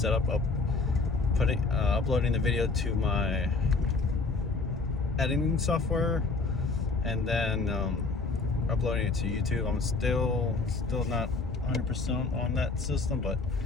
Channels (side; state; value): right; quieter; 3.8 dB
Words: of uploading the video to my editing software and then uploading it to YouTube. I'm still not 100% on that system, but